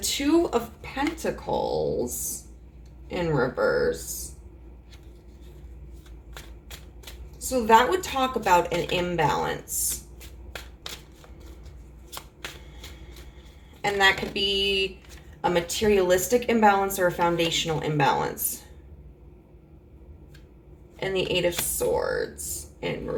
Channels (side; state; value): both; identical; correlation 1.00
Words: of Pentacles in reverse. So that would talk about an imbalance. And that could be a materialistic imbalance or a foundational imbalance. And the Eight of Swords in